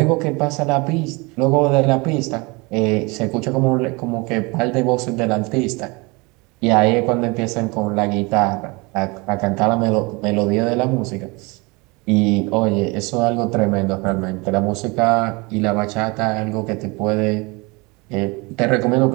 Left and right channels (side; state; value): left; quieter; 26.7 dB